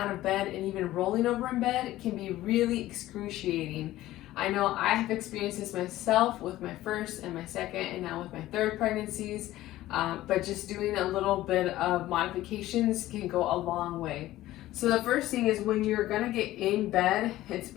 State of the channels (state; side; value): quieter; right; 15.5 dB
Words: of bed and even rolling over in bed can be really excruciating. I know I have experienced this myself with my first and my second and now with my third pregnancies, but just doing a little bit of modifications can go a long way. So the first thing is when you're gonna get in bed, it's